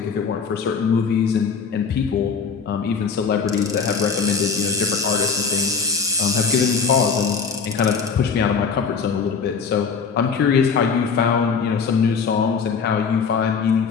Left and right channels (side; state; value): right; quieter; 5.6 dB